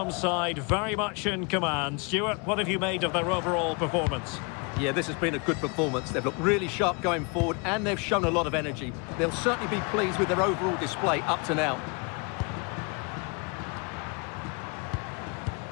side very much in command. Stuart, what have you made of their overall performance? Yeah, this has been a good performance. They've looked really sharp going forward, and they've shown a lot of energy. They'll certainly be pleased with their overall display up to now.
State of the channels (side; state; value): right; quieter; 32.3 dB